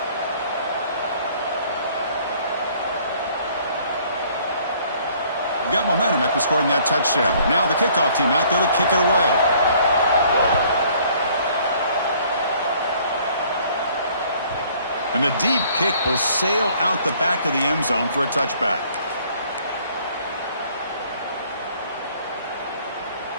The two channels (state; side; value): inverted; both; correlation -0.59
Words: Got momentum after scoring that touchdown. Now the kickoff team out there to kick it away. And the deep kick will sail out the back of the end zone for a touchback.